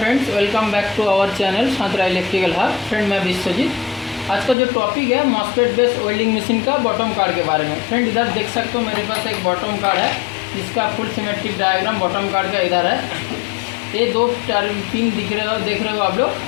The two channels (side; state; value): right; drops out; at 4.5 s